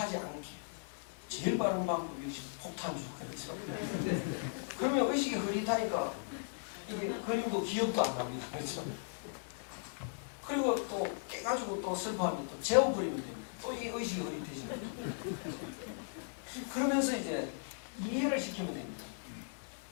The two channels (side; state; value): right; silent; digital silence